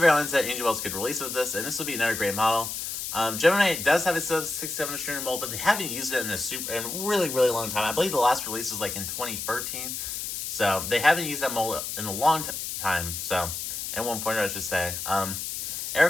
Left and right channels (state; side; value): noise; left; hiss, 5 dB below the sound